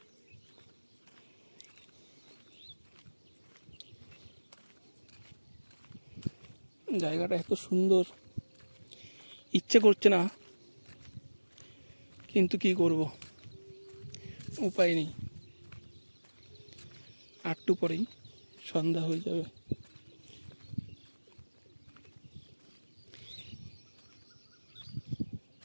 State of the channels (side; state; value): both; inverted; correlation -1.00